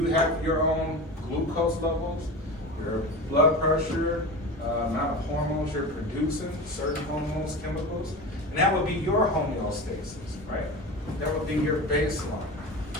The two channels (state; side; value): normal; both; correlation 0.28